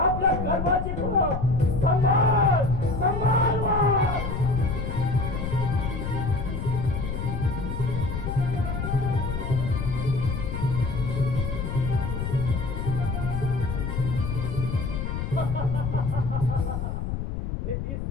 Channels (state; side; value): noise; left; rumble, 3 dB below the sound